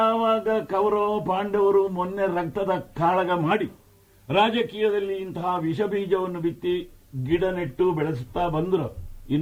ಕೌರವ ಪಾಂಡವರು ಮೊನ್ನೆ ರಕ್ತದ ಕಾಳಗ ಮಾಡಿ ರಾಜಕೀಯದಲ್ಲಿ ಇಂತಹ ವಿಷ ಬೀಜವನ್ನು ಬಿತ್ತಿ ಗಿಡ ನೆಟ್ಟು ಬೆಳೆಸುತ್ತಾ ಬಂದ್ರು,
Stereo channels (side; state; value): both; identical; correlation 1.00